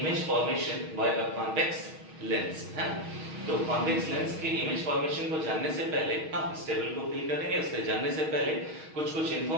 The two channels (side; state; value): left; late; 6.4 ms